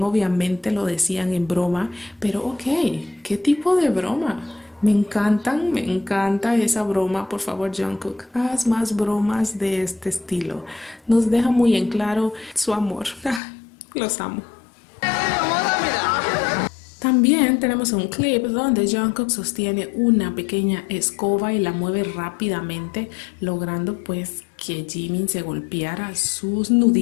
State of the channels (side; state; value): right; drops out; at 13.4 s